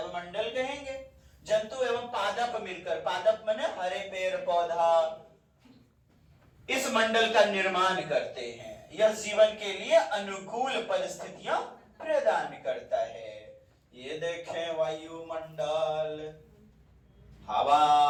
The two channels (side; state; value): both; identical; correlation 1.00